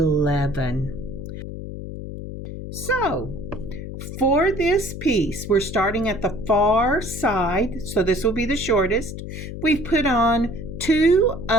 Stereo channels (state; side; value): noise; left; hum, 9 dB below the sound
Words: So for this piece, we're starting at the far side, so this will be the shortest. We've put on 2